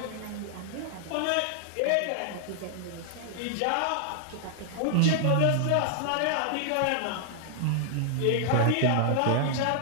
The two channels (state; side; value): different; both; correlation 0.00